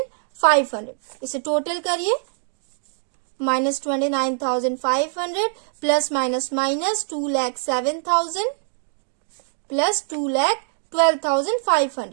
इसे टोटल करिए, minus 29,500 plus minus minus 2,07,000 plus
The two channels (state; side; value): silent; left; digital silence